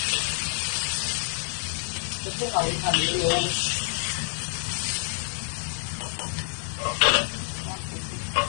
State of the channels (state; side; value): silent; right; digital silence